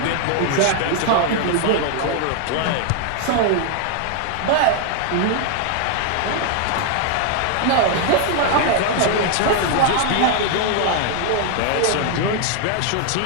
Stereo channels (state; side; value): different; both; correlation 0.00